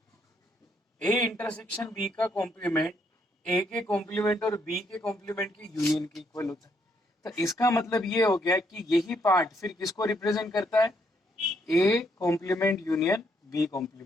बी का कॉम्प्लीमेंट ए के कॉम्प्लीमेंट और बी के कॉम्प्लीमेंट की यूनियन के इक्वल होता है। तो इसका मतलब ये हो गया कि यही पार्ट फिर किसको रिप्रेजेंट करता है, A complement union B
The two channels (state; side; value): normal; both; correlation 0.73